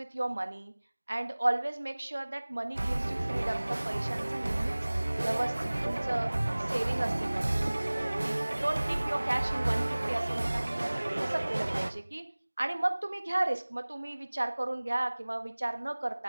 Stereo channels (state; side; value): inverted; both; correlation -1.00